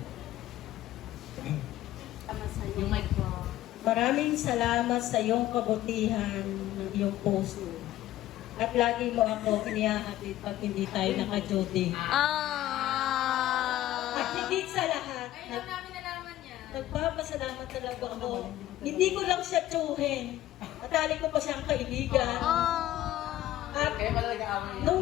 Maraming salamat sa iyong kabutihan ng iyong puso. At lagi mo ako kinihahatid pag hindi tayo naka-duty. At higit sa lahat, nagpapasalamat talaga ako. Hindi ko lang siya tsuhin. Natali ko pa siyang kaibigan. At Kaya pala nag-aaway.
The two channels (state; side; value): quieter; right; 14.2 dB